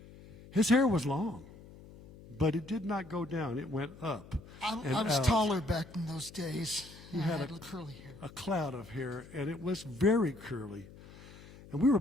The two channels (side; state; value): left; noise; hum, 19 dB below the sound